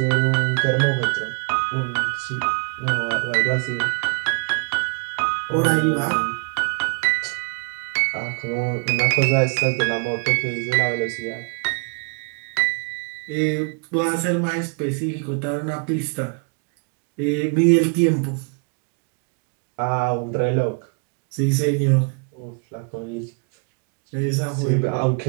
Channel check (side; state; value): left; quieter; 37.6 dB